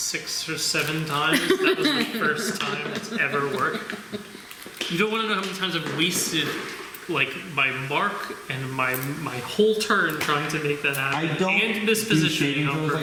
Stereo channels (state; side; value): identical; both; correlation 1.00